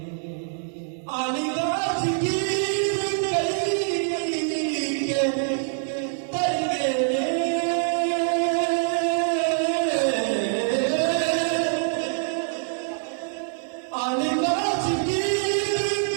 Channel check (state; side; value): silent; left; digital silence